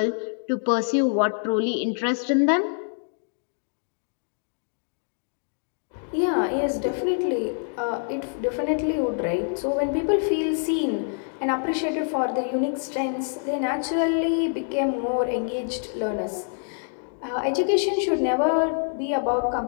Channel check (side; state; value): right; silent; 61 dB below the other